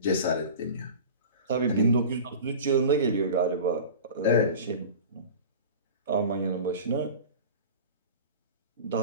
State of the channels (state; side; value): inverted; both; correlation -0.35